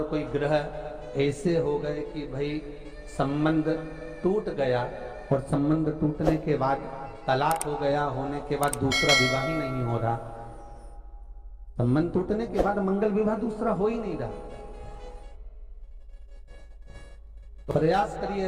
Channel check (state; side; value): identical; both; correlation 1.00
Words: कोई ग्रह ऐसे हो गए कि भाई संबंध टूट गया, और संबंध टूटने के बाद तलाक हो गया, होने के बाद दूसरा विवाह ही नहीं हो रहा, संबंध टूटने के बाद मंगल विवाह दूसरा हो ही नहीं रहा, तो प्रयास